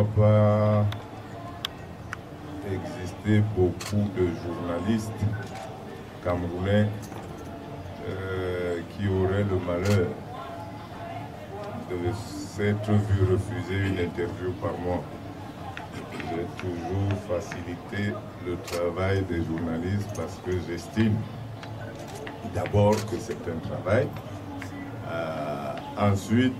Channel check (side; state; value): both; identical; correlation 1.00